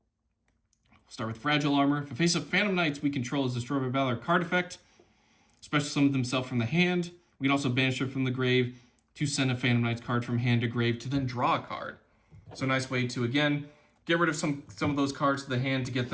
We'll start with Fragile Armor. If a face-up Phantom Knights we control is destroyed by Valor card effect, special summon themselves from the hand. We can also banish it from the grave to send a Phantom Knights card from hand to grave to then draw a card. So a nice way to, again, get rid of some of those cards to the hand to get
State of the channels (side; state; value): both; identical; correlation 1.00